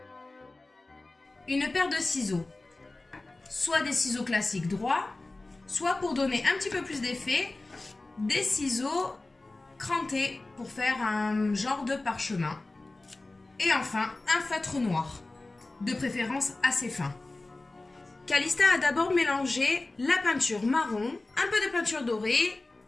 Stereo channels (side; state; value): right; quieter; 3.1 dB